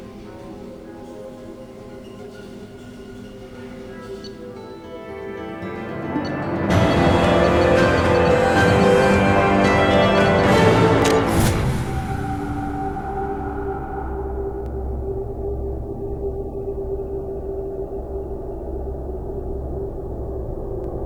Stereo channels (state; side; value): identical; both; correlation 1.00